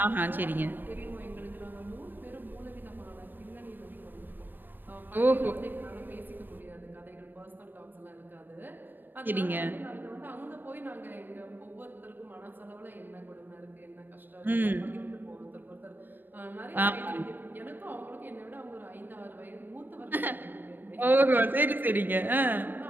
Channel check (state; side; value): late; left; 0.092 ms